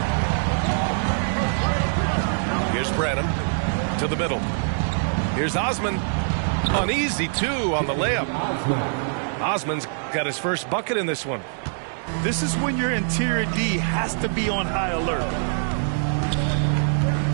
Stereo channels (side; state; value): left; silent; digital silence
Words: Here's Branham to the middle. Here's Osman. An easy 2 on the layup. Osman's got his first bucket in this one. This is when your interior D has to be on high alert.